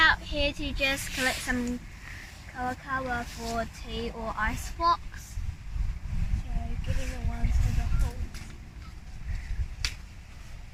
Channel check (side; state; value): both; identical; correlation 1.00